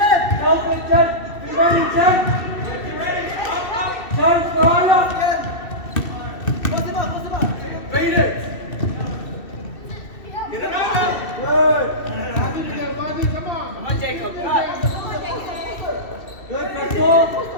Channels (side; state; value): right; late; 2.7 ms